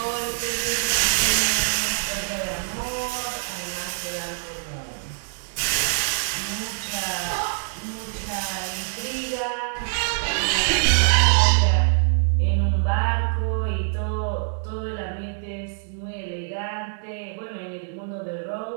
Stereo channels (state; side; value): silent; left; digital silence